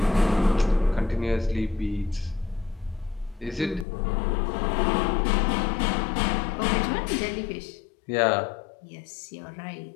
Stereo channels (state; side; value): drops out; right; at 3.9 s